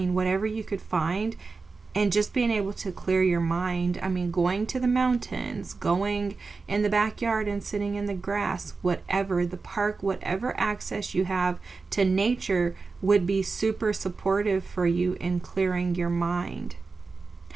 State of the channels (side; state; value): left; quieter; 4.3 dB